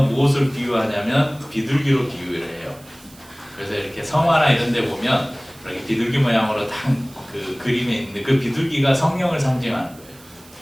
무엇을 비유하냐면 비둘기로 비유를 해요. 그래서 이렇게 성화나 이런 데 보면 이렇게 비둘기 모양으로 딱 그 그림에 있는데 그 비둘기가 성령을 상징하는 거예요.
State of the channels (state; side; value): noise; right; hiss, 24 dB below the sound